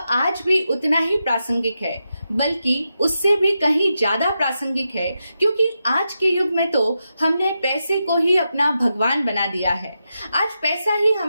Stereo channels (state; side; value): inverted; both; correlation -0.87